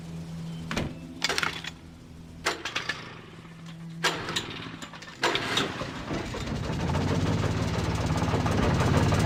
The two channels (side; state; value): both; identical; correlation 1.00